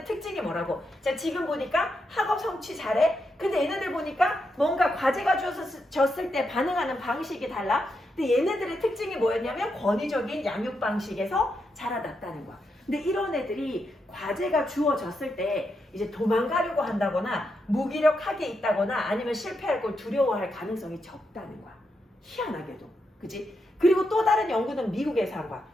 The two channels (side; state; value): both; normal; correlation 0.83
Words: 특징이 뭐라고? 자, 지금 보니까 학업 성취 잘해. 근데 얘네들 보니까 뭔가 과제가 주어졌을 때 반응하는 방식이 달라. 근데 얘네들의 특징이 뭐였냐면 권위적인 양육 방식에서 자라났다는 거야. 근데 이런 애들이 과제가 주어졌을 때 이제 도망가려고 한다거나 무기력하게 있다거나 아니면 실패할 걸 두려워할 가능성이 적다는 거야. 희한하게도. 그치? 그리고 또 다른 연구는 미국에서 한 거야.